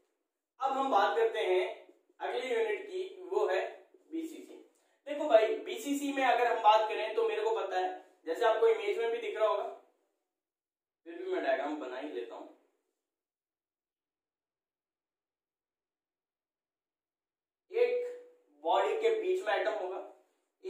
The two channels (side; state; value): both; identical; correlation 1.00